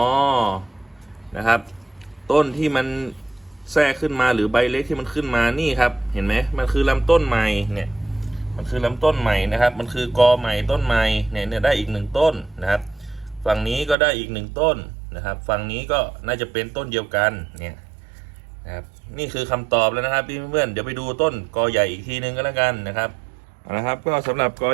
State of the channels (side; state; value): left; drops out; at 14.0 s